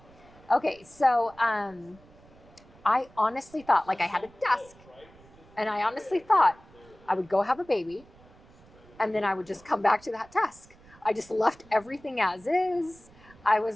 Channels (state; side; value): noise; right; rumble, 25 dB below the sound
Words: Okay, so I honestly thought, I had a desk, and I honestly thought I would go have a baby, and then I would just come back to that desk. I just left everything as is. I